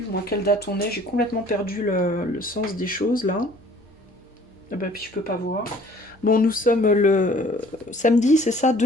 moi, quelle date on est, j'ai complètement perdu le sens des choses, là. Ah bah, puis je peux pas voir. Bon, nous sommes le samedi, c'est ça,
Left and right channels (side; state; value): both; normal; correlation 0.54